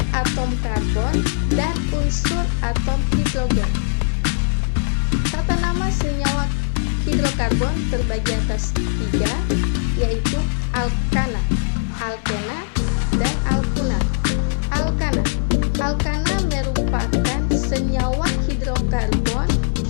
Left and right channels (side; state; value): right; silent; digital silence